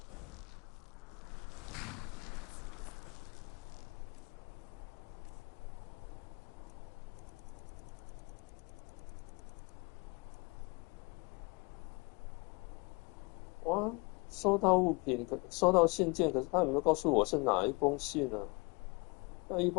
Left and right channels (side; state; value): right; quieter; 28.9 dB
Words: 哇，收到物品，收到信件，可是他有没有告诉我是哪一封信呢？要一